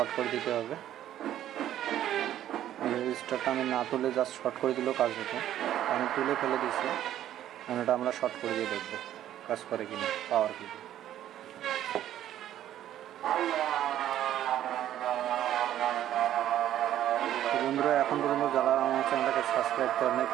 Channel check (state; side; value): quieter; left; 11.9 dB